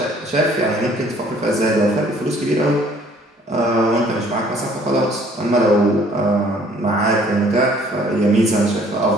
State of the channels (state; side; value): normal; both; correlation 0.58